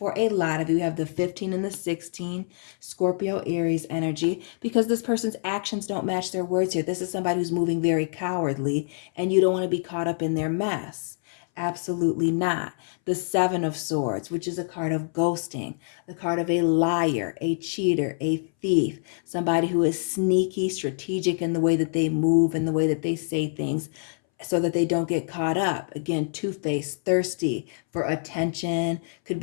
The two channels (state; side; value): silent; right; 61 dB below the other